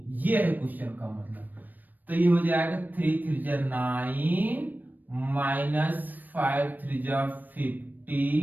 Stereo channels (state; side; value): late; left; 0.087 ms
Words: ये है क्वेश्चन का मतलब। तो ये हो जाएगा 3 3 9 माइनस 5 3